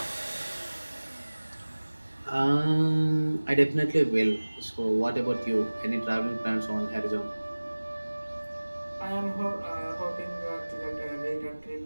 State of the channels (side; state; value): both; inverted; correlation -1.00